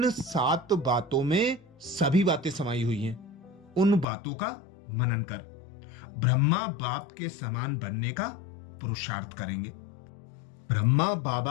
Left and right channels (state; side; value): drops out; right; at 4.0 s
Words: 7 बातों में सभी बातें समाई हुई हैं। उन बातों का मनन कर ब्रह्मा बाप के समान बनने का पुरुषार्थ करेंगे। ब्रह्मा